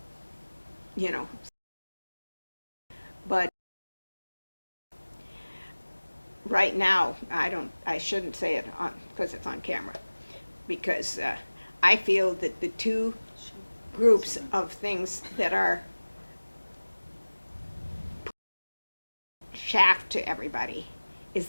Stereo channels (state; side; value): inverted; both; correlation -1.00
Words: you know. But right now, I shouldn't say it on, because it's on camera, because I feel that the two groups of things that are shaft to everybody is